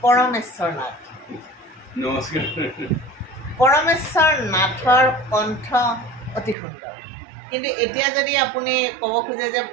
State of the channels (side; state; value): left; drops out; at 6.6 s